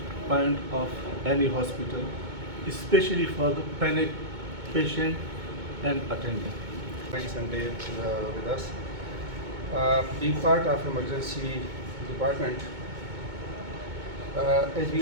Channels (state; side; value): late; left; 2.2 ms